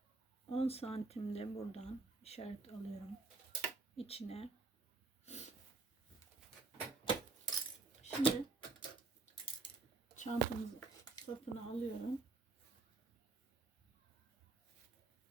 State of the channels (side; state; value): left; quieter; 3.8 dB